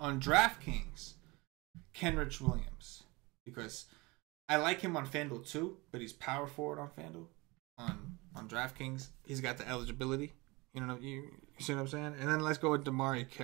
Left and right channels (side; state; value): left; quieter; 24.3 dB